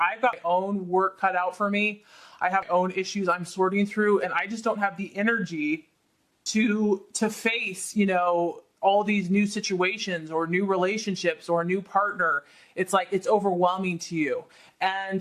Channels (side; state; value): both; identical; correlation 1.00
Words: got my own work cut out for me. I have my own issues I'm sorting through, and I just don't have the energy to face, all these new situations or new relationships or a new partner. It's like, it's overwhelming to you.